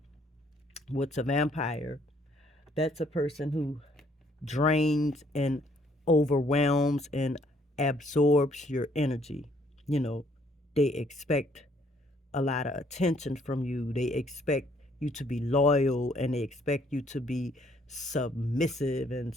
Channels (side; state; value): both; normal; correlation 0.66